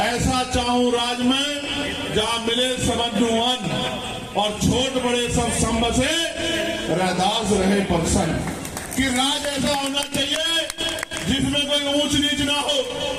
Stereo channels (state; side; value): identical; both; correlation 1.00